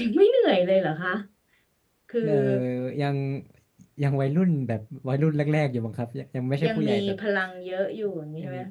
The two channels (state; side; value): identical; both; correlation 1.00